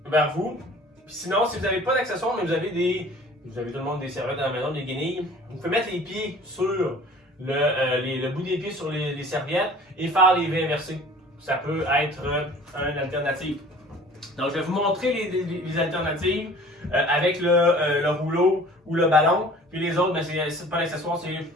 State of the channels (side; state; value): both; normal; correlation 0.47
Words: vers vous. Puis sinon, si vous n'avez pas d'accessoire, mais vous avez tout le monde des serviettes à la maison, des guenilles, vous pouvez mettre les pieds sur le bout des pieds sur les serviettes et faire les V inversés. Ça peut être une alternative. Donc, je vais vous montrer les alternatives avec le rouleau ou le ballon. Puis les autres, ben, c'est pas l'accessoire, c'est